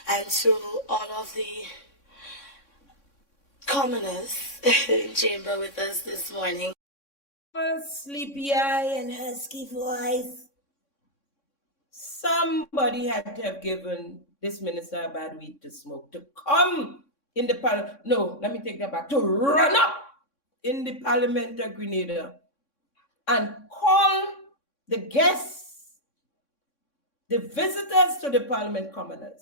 and to all of the commoners in chamber with us this morning. Sleepy eye and husky voice. Somebody had to have given this minister a bad weed to smoke to come in the parliament. No, let me take that back. To run up in the Parliament of Grenada and call the guests, the visitors to the Parliament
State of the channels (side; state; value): right; late; 3.6 ms